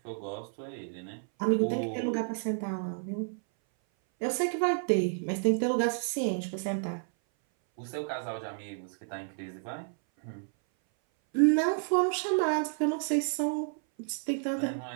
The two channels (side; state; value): left; silent; 57 dB below the other